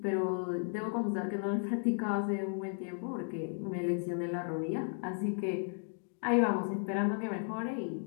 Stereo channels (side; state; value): right; silent; 55 dB below the other